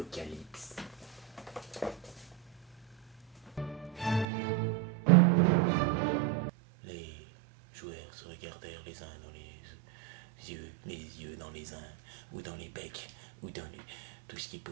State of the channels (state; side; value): drops out; left; at 4.2 s